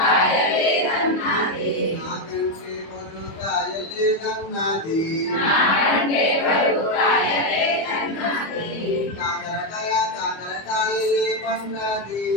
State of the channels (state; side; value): late; right; 25 ms